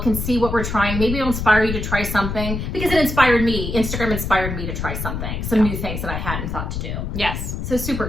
and see what we're trying. Maybe it'll inspire you to try something because it inspired me. Instagram inspired me to try something, some new things that I hadn't thought to do. Yes. So super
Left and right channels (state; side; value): noise; left; rumble, 4 dB below the sound